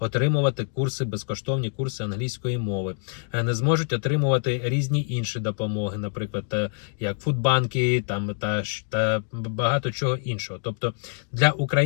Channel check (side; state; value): right; silent; 61 dB below the other